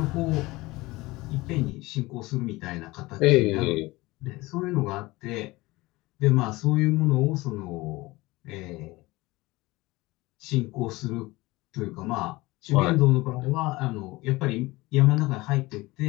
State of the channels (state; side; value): quieter; right; 20.9 dB